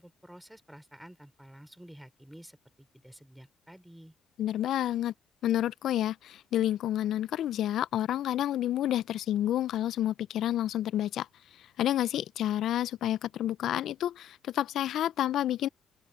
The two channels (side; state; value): right; quieter; 11.8 dB